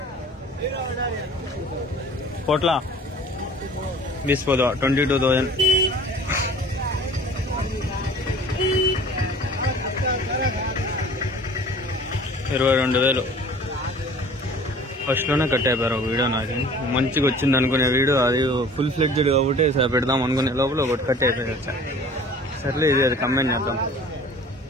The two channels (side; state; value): both; normal; correlation 0.47